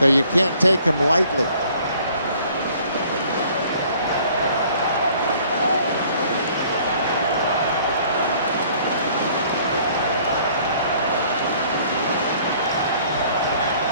you can't take him lightly.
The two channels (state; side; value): inverted; both; correlation -0.57